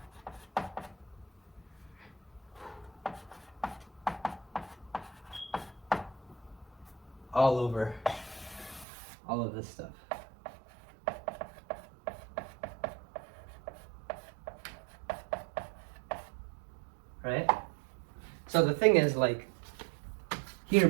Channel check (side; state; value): left; drops out; at 8.8 s